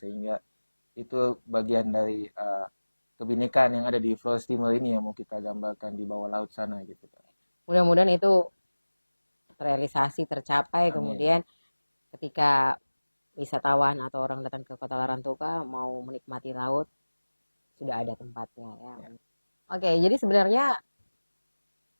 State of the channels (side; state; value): both; inverted; correlation -1.00